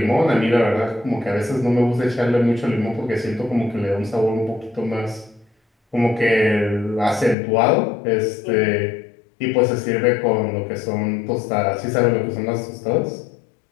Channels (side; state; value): right; drops out; at 7.4 s